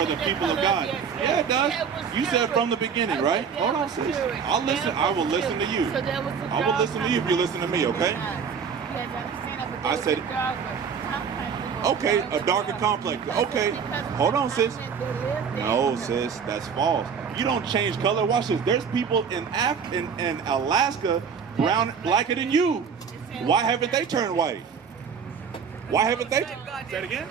people of God? Yeah, it does. You said from the beginning, right? Hold on, sis. I'll listen. I will listen to you. I will listen to you if you listen to me, okay? I said, okay, a darker complex. Okay, hold on, sis. No, sis, that's false. You don't change color. Watch this. There's people in Alaska blacker than you. Why haven't they turned white? Why haven't they? Say it again.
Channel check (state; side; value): quieter; left; 6.5 dB